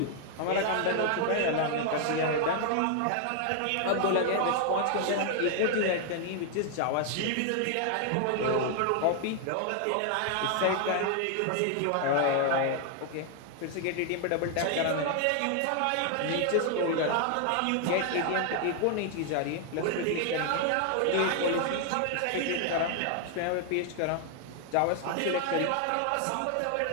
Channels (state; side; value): different; both; correlation 0.00